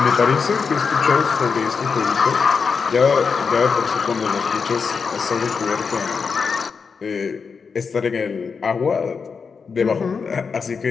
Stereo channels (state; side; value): quieter; right; 5.5 dB